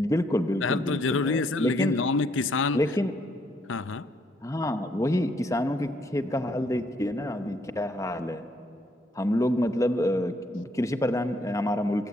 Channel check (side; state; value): both; normal; correlation 0.70